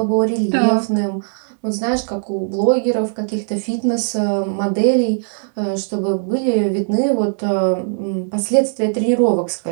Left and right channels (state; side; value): silent; left; digital silence